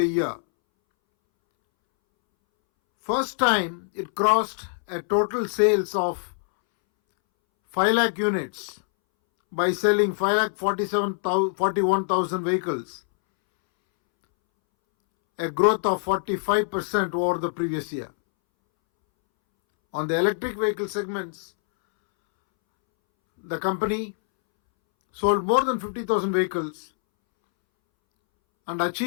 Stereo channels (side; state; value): right; silent; 62 dB below the other